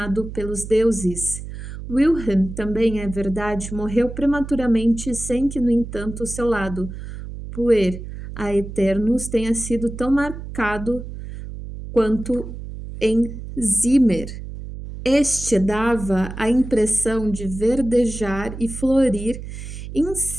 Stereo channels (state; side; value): noise; right; hum, 10 dB below the sound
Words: pelos deuses. Wilhelm, também é verdade, morreu prematuramente sem que, no entanto, o seu lado puer aeternus tenha sido tão marcado quanto em Zimmer. Este dava a impressão de verdejar e florir